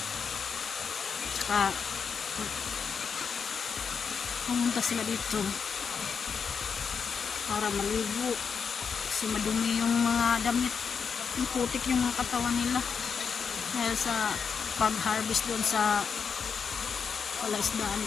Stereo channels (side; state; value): right; quieter; 6.2 dB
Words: Tsaka pumunta sila dito para maligo kasi madumi yung mga damit, yung putik yung mga katawan nila dahil sa pag-harvest doon sa palaisdaan ni